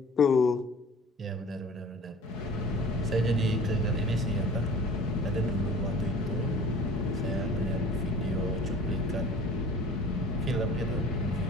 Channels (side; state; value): both; normal; correlation 0.44